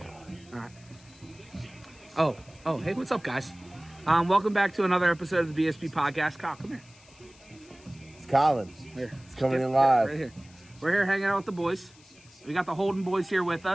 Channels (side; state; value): left; noise; hiss, 26 dB below the sound